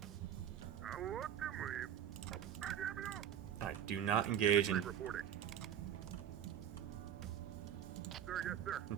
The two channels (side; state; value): left; quieter; 9.9 dB